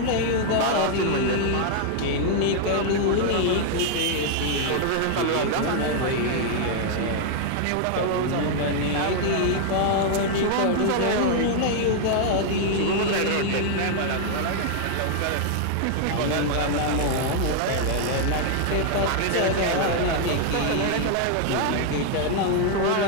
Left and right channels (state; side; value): different; both; correlation 0.00